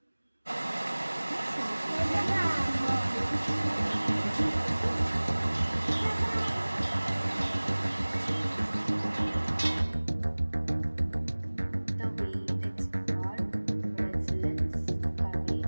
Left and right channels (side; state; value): both; inverted; correlation -1.00